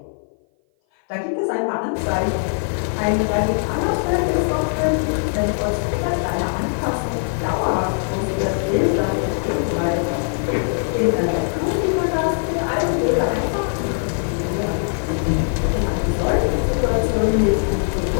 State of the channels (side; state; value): right; silent; 57 dB below the other